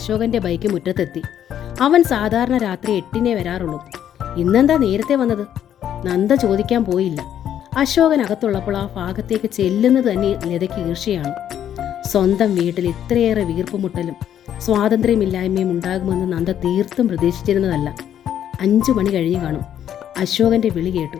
ബൈക്ക് മുറ്റത്തെത്തി. അവൻ സാധാരണ രാത്രി 8-നേ വരാറുള്ളൂ. ഇന്നെന്താ നേരത്തെ വന്നത്? നന്ദ ചോദിക്കാൻ പോയില്ല. അശോകൻ അകത്തുള്ളപ്പോൾ ആ ഭാഗത്തേക്ക് ചെല്ലുന്നത് തന്നെ ലതയ്ക്ക് ഈർഷ്യയാണ്. സ്വന്തം വീട്ടിൽ ഇത്രയേറെ വീർപ്പുമുട്ടലും സ്വാതന്ത്ര്യമില്ലായ്മയും ഉണ്ടാകുമെന്ന് നന്ദ തീർത്തും പ്രതീക്ഷിച്ചിരുന്നതല്ല. 5 മണി കഴിഞ്ഞു കാണും. അശോകന്റെ വിളി കേട്ടു.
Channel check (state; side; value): quieter; right; 10.2 dB